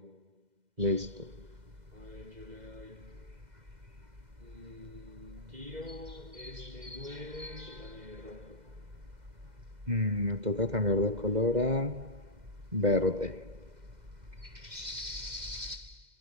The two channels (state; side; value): late; left; 2.0 ms